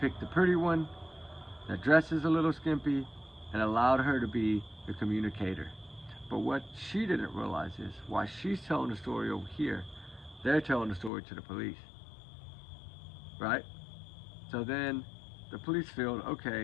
the pretty one that dresses a little skimpy and allowed her to be the communicator. But what she didn't realize is, while she's telling the story over here, they're telling the story to the police, right? So then the police feel,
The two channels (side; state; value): right; drops out; at 11.1 s